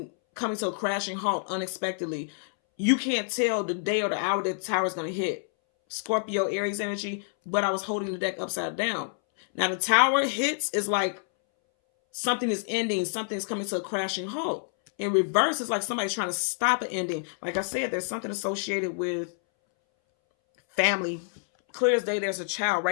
coming to a crashing halt unexpectedly. You can't tell the day or the hour that the tower is going to hit. Scorpio, Aries energy, but I was holding the deck upside down. Now the tower hits is like something is ending, something is coming to a crashing halt. In reverse, it's like somebody's trying to stop an ending. Like I said, there's something associated with family. Clear as day, there's a child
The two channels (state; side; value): silent; right; 60 dB below the other